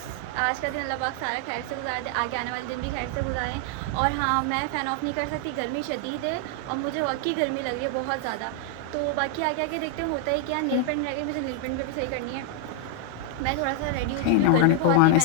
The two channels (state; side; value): different; both; correlation 0.00